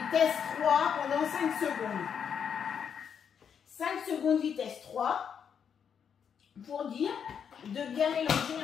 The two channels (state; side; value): quieter; right; 7.5 dB